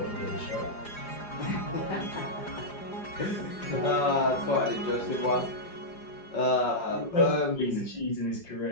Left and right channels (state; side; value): late; right; 4.9 ms